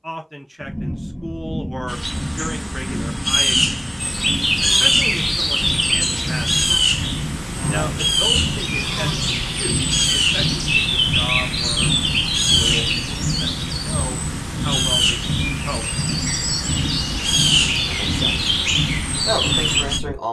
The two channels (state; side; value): identical; both; correlation 1.00